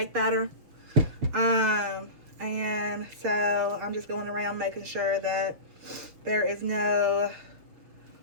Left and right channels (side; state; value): left; late; 6.4 ms